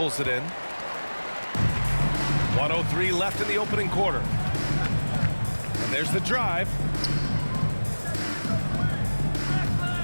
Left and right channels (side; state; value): both; inverted; correlation -1.00